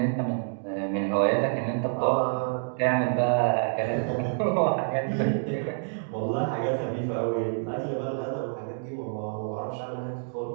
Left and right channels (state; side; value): silent; left; digital silence